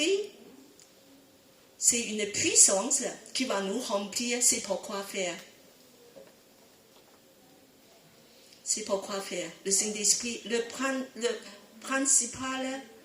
c'est une puissance qui va nous remplir. C'est pourquoi faire. C'est pourquoi faire. Le Saint-Esprit, le principal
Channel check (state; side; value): identical; both; correlation 1.00